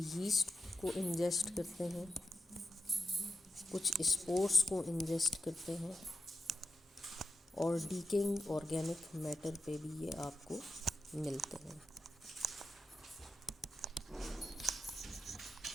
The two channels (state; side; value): normal; both; correlation 0.90